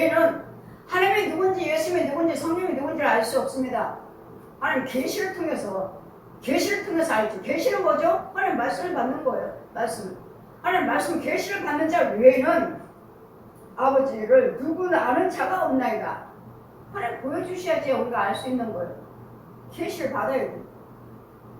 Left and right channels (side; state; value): both; identical; correlation 1.00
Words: 하나님이 누군지 예수님이 누군지 성령이 누군지를 알 수 없습니다. 하나님 계시를 통해서 알죠. 계시는 뭐죠? 하나님 말씀을 받는 거예요. 하나님 말씀 계시를 받는 자 외에는 아버지를 누구나 아는 자가 없나이다. 하나님 보여주셔야지 우리가 알 수 있는 거예요. 계시를 받아야 돼요.